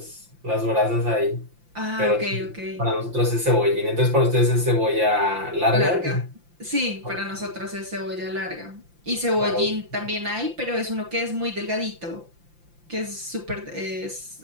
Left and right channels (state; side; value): late; left; 5.8 ms